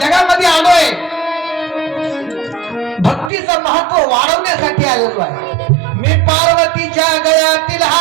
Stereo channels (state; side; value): drops out; left; at 3.3 s